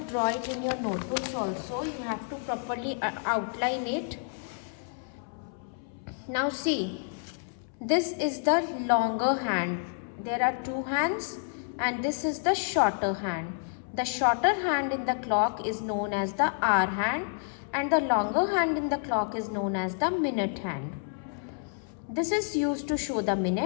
it in your notebooks also. You have to properly outline it. Now see, this is the longer hand. There are two hands and this is the shorter hand. The shorter hand in the clock is known as the hour hand and the longer hand in the clock is known as the minute hand. This is used to show the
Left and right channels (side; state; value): right; silent; 58 dB below the other